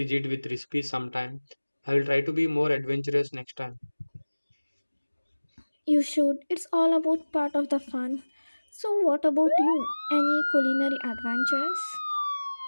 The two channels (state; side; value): inverted; both; correlation -1.00